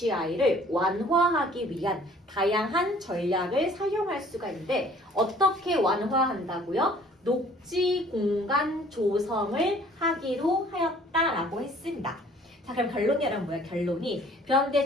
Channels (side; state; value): both; normal; correlation 0.54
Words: 완화하기 위한 다양한 전략을 사용할 수가 있는데, 어떻게 완화한다고요? 녹지 공간 조성을 하기로 하였다라고 했습니다. 자, 그럼 결론이 여러분 뭐야? 결론이. 그런데